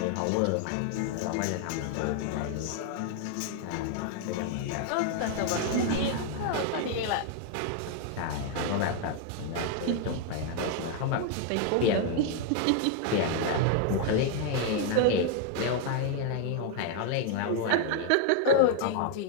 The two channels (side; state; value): both; different; correlation 0.00